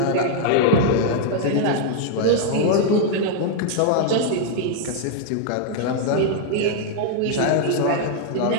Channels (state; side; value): different; both; correlation 0.00